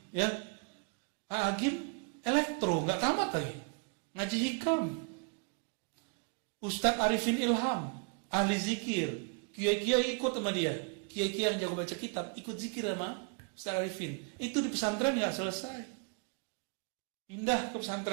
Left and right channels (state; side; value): quieter; left; 35.9 dB